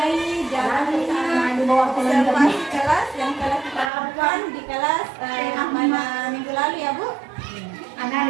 jalannya observasi kelas yang telah kita lakukan di kelas pada minggu lalu ya Bu.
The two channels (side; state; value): left; drops out; at 3.9 s